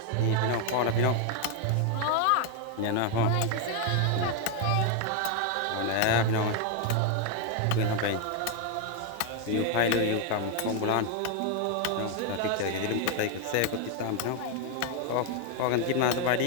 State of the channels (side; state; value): both; different; correlation 0.01